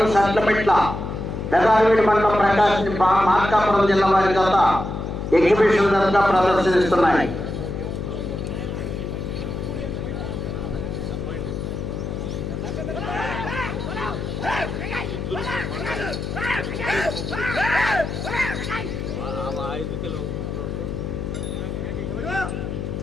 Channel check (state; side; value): noise; left; hum, 5 dB below the sound